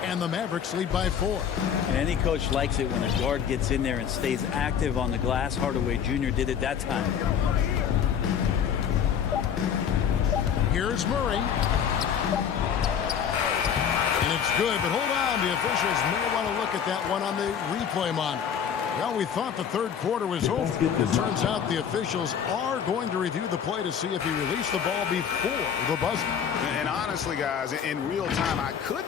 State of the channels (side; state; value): right; quieter; 8.0 dB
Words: And the Mavericks lead by 4. Any coach likes it when a guard gets in there and stays active on the glass. Hardaway Jr. did it that time. Here's Murray. And it's good, but hold on. The officials may want to look at that one on the replay monitor. Well, we thought the third quarter was over. It turns out the officials are going to review the play to see if he released the ball before the buzzer. And honestly, guys, in real time, I